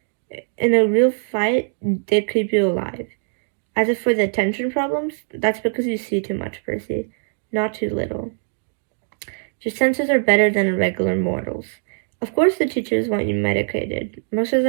In a real fight, they keep you alive. As if for the attention problems, that's because you see too much, Percy, not too little. Your senses are better than a regular mortal's. Of course the teachers want you medicated. Most of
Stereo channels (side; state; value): left; silent; digital silence